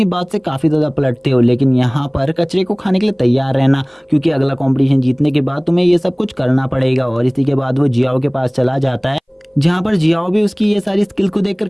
बात से काफ़ी ज़्यादा पलटते हो, लेकिन यहाँ पर कचरे को खाने के लिए तैयार रहना, क्योंकि अगला कॉम्पिटिशन जीतने के बाद तुम्हें ये सब कुछ करना पड़ेगा। और इसी के बाद वो जियाओ के पास चला जाता है, जहाँ पर जियाओ भी उसकी ये सारी स्किल को देखकर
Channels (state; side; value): identical; both; correlation 1.00